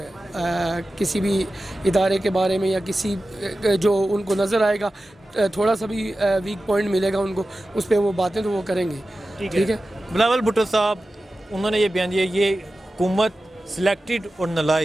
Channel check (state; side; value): normal; both; correlation 0.94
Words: کسی بھی ادارے کے بارے میں یا کسی جو ان کو نظر آئے گا تھوڑا سا بھی ویک پوائنٹ ملے گا ان کو، اس پہ وہ باتیں تو وہ کریں گے. ٹھیک ہے. بلاول بھٹو صاحب انہوں نے یہ بیان دیا یہ حکومت سلیکٹڈ اور